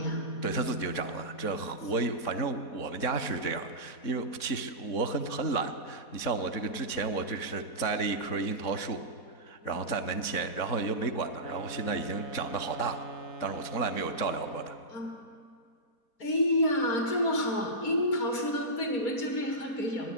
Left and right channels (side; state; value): right; late; 4.2 ms